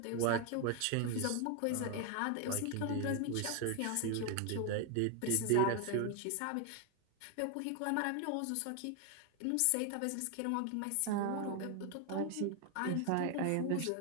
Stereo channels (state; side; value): different; both; correlation 0.01